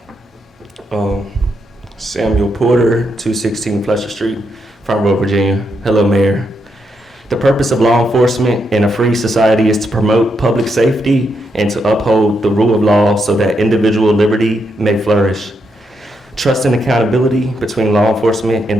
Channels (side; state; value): both; normal; correlation 0.80